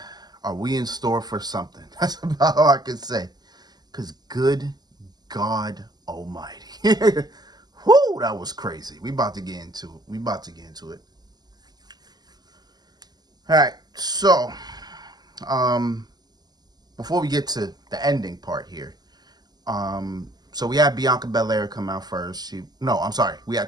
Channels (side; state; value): left; late; 0.20 ms